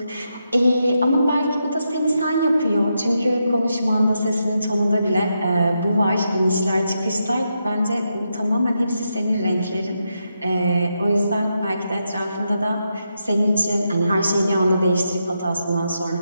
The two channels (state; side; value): inverted; both; correlation -0.84